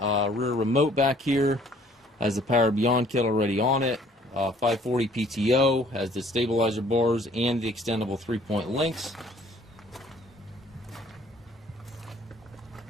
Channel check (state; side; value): normal; both; correlation 0.57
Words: remote back here, has the Power Beyond kit already on it, 540 PTO, has the stabilizer bars and the extendable 3-point links.